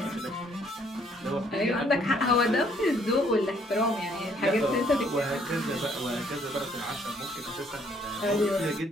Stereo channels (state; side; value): normal; both; correlation 0.65